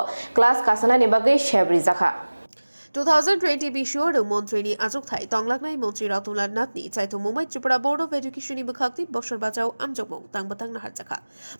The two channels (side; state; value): both; inverted; correlation -1.00